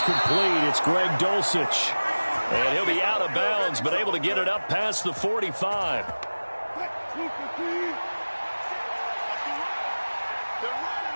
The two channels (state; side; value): inverted; both; correlation -1.00